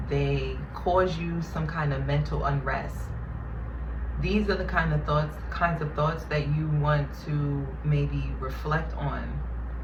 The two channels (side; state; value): both; identical; correlation 1.00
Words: they cause you some kind of mental unrest, these are the kinds of thoughts that you want to maybe reflect on.